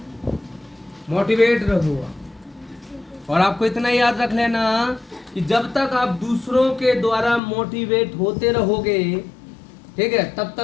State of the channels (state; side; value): drops out; right; at 7.4 s